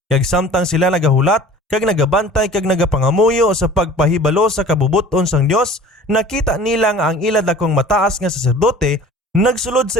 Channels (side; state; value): both; normal; correlation 0.45